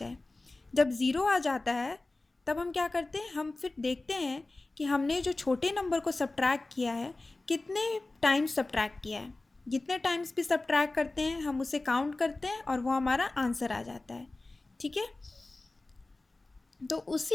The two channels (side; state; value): right; quieter; 3.1 dB